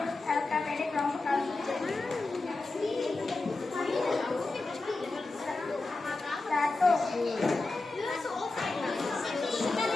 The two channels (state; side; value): quieter; right; 3.3 dB